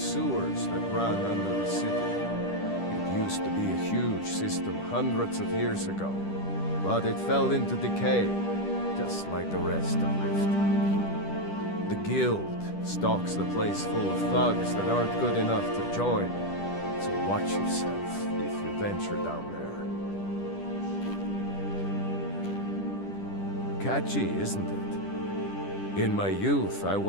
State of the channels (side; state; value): right; late; 10 ms